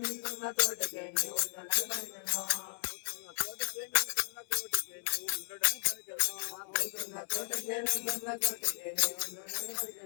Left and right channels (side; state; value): right; silent; 54 dB below the other